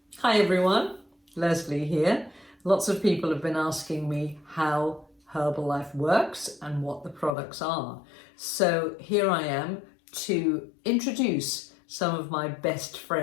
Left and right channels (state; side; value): drops out; right; at 7.4 s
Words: Hi everyone, Leslie here. Lots of people have been asking me how Herbalife works and what the products are. So here I am to introduce some of my best